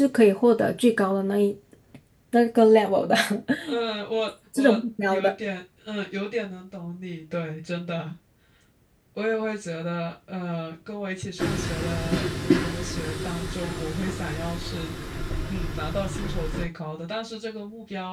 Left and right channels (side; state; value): both; identical; correlation 1.00